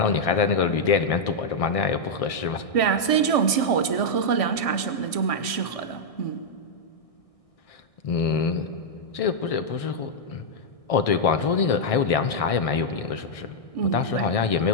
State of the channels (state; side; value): late; right; 1.6 ms